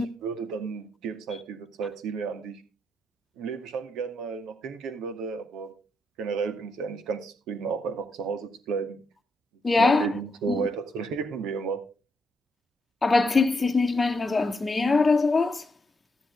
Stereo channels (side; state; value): both; normal; correlation 0.80